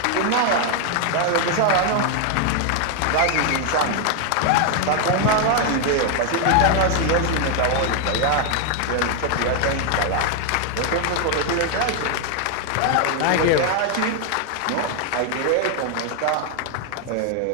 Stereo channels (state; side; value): different; both; correlation 0.00